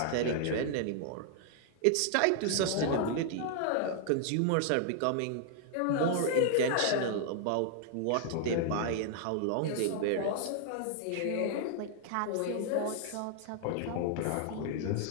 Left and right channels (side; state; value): both; different; correlation 0.00